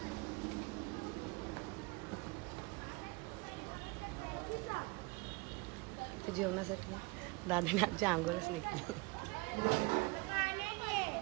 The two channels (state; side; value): quieter; left; 26.6 dB